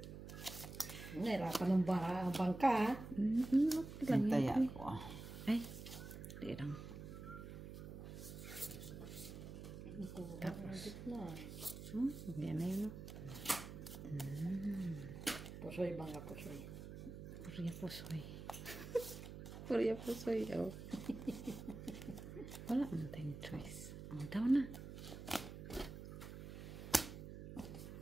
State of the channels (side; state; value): right; noise; hum, 10 dB below the sound